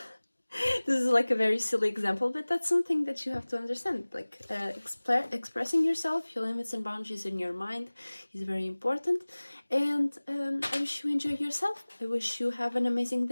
this is like a very silly example, but that's something that you have to understand. Like expressing yourself, your limits and boundaries in your mind is very important. And I wish you enjoy yourself. I wish you have an amazing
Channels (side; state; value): both; inverted; correlation -1.00